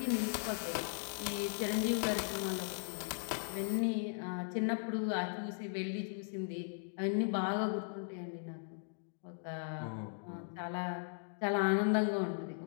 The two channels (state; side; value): silent; right; digital silence